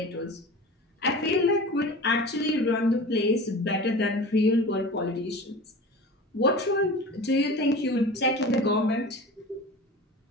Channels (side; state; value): both; normal; correlation 0.35